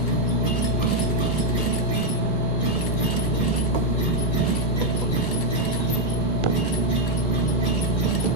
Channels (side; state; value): both; normal; correlation 0.02